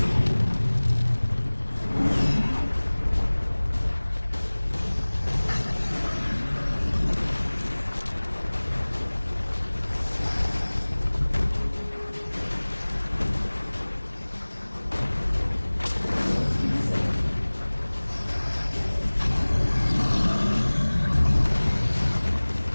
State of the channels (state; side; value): inverted; both; correlation -1.00